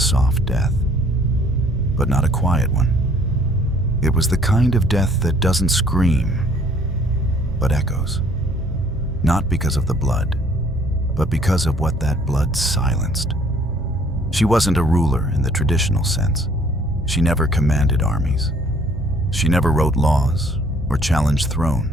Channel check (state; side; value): normal; both; correlation 0.59